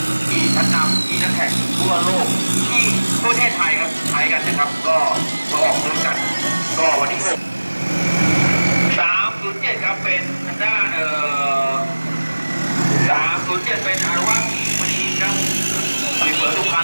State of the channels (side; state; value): both; inverted; correlation -1.00